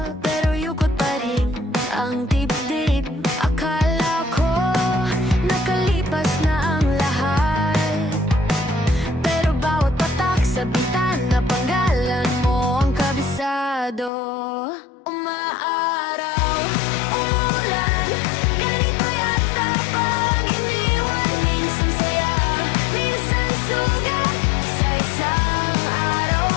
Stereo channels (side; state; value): right; drops out; at 14.1 s